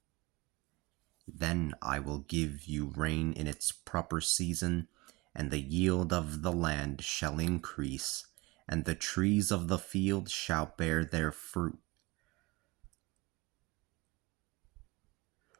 Then I will give you rain in its proper season, and the yield of the land shall increase, and the trees of the field shall bear their fruit.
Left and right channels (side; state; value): left; quieter; 23.8 dB